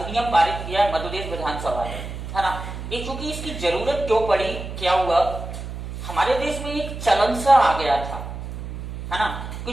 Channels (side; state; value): right; noise; hum, 8 dB below the sound